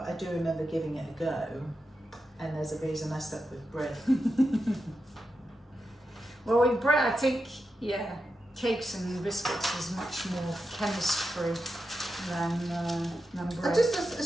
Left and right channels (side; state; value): both; normal; correlation 0.89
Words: I do remember giving it a go. And there's a reason I stuck with bread. Well, with bread, I think, cakes and biscuits is much more chemistry than bread.